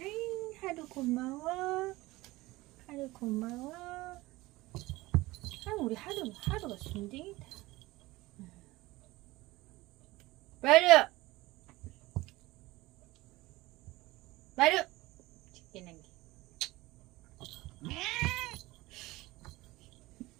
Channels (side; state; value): left; quieter; 19.9 dB